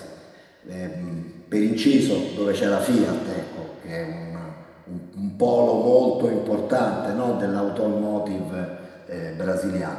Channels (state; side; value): identical; both; correlation 1.00